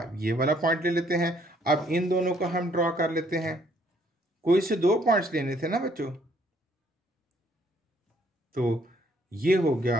ये वाला पॉइंट ले लेते हैं। अब इन दोनों को हम ड्रॉ कर लेते हैं। कोई से दो पॉइंट्स लेने थे ना बच्चों, तो ये हो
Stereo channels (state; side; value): normal; both; correlation 0.66